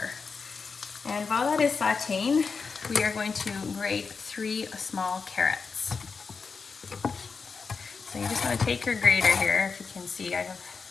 And while that is sauteing, we are going to grate 3 small carrots. So you just want to take your grater here, if you can see,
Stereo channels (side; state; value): right; quieter; 5.0 dB